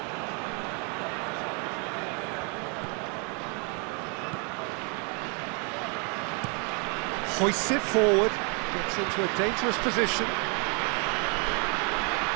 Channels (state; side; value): quieter; left; 35.7 dB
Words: Hoists it forward, gets into a dangerous position.